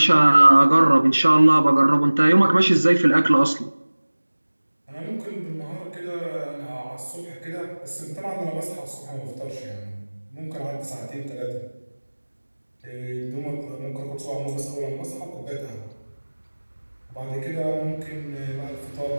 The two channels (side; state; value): both; inverted; correlation -1.00